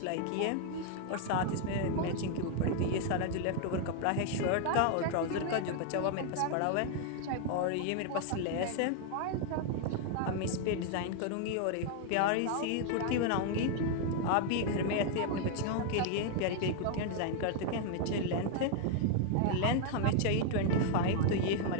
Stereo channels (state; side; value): different; both; correlation 0.00